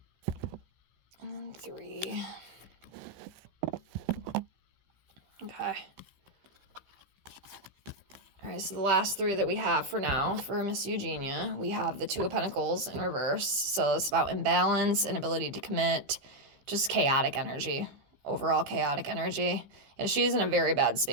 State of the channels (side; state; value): left; late; 15 ms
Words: and then 3. Okay. All right, so the last 3 that we have for now for Miss Eugenia, we have the 2 of Pentacles in reverse. So it's about imbalance, inability to commit, just chaotic energy, overall chaotic energy. And she's in a very bad